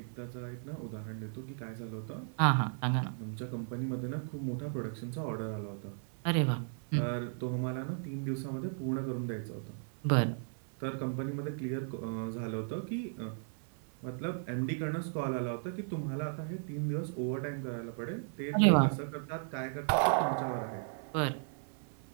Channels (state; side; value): silent; left; 54 dB below the other